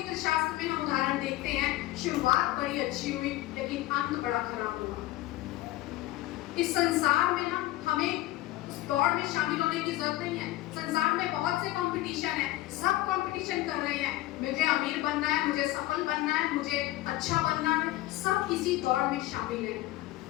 शास्त्र में हम उदाहरण देखते हैं, शुरुआत बड़ी अच्छी हुई लेकिन अंत बड़ा खराब हुआ। इस संसार में ना हमें उस दौड़ में शामिल होने की जरूरत नहीं है। संसार में बहुत से कंपटीशन है, सब कंपटीशन कर रहे हैं, मुझे अमीर बनना है, मुझे सफल बनना है, मुझे अच्छा बनना है, सब इसी दौड़ में शामिल है।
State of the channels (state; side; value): quieter; right; 16.7 dB